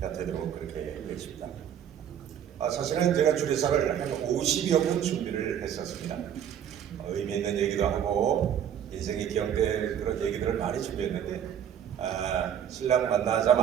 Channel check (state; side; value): quieter; left; 9.4 dB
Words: 되도록 그렇게 되겠습니다. 사실은 제가 주례사를 한 50여 분 준비를 했었습니다. 의미 있는 얘기도 하고 인생이 기억될 그런 얘기들을 많이 준비했는데 신랑